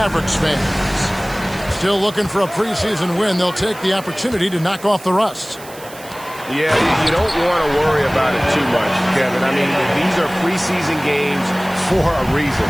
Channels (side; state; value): right; noise; hiss, 18 dB below the sound